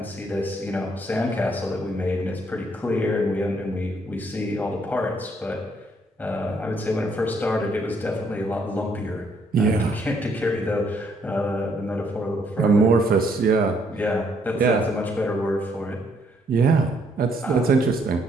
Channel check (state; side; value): normal; both; correlation 0.69